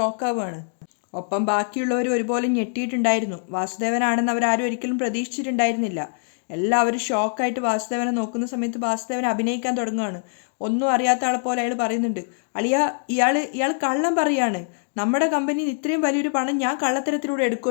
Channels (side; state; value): right; silent; digital silence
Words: ഒപ്പം ബാക്കിയുള്ളവർ ഒരുപോലെ ഞെട്ടിയിട്ടുണ്ടായിരുന്നു. വാസുദേവനാണെന്ന് അവരാരും ഒരിക്കലും പ്രതീക്ഷിച്ചിട്ടുണ്ടായിരുന്നില്ല. എല്ലാവരും ഷോക്കായിട്ട് വാസുദേവനെ നോക്കുന്ന സമയത്ത് വാസുദേവൻ അഭിനയിക്കാൻ തുടങ്ങുകയാണ്. ഒന്നും അറിയാത്ത ആളെ പോലെ അയാൾ പറയുന്നുണ്ട്, അളിയ, ഇയാൾ കള്ളം പറയാണ്. നമ്മുടെ കമ്പനിയിൽ ഇത്രയും വലിയൊരു പണം ഞാൻ കള്ളത്തരത്തിലൂടെ